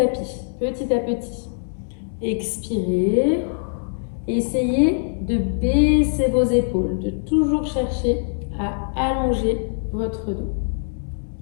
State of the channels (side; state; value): right; silent; digital silence